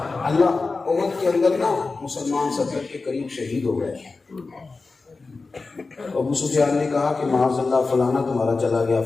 اللہ احد کے اندر نا مسلمان 70 کے قریب شہید ہو گئے. ابو سفیان نے کہا کہ معاذ اللہ فلانا تمہارا چلا گیا،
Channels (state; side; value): quieter; right; 3.9 dB